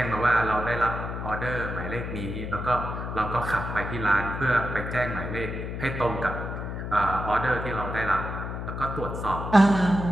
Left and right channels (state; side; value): noise; left; hum, 5 dB below the sound